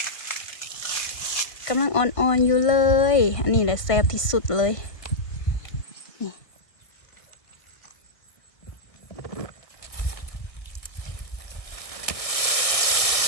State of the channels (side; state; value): right; late; 1.6 ms